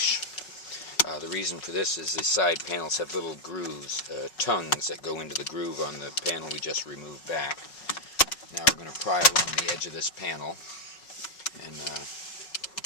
The reason for this is the side panels have little grooves, tongues that go into the groove on the panel we just removed back. Now we're going to pry along the edge of this panel and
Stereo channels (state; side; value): late; right; 5.4 ms